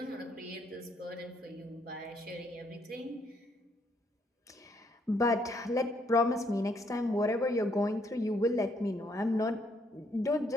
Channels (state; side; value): normal; both; correlation 0.71